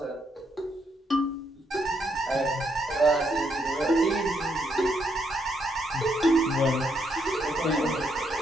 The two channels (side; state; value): both; normal; correlation 0.76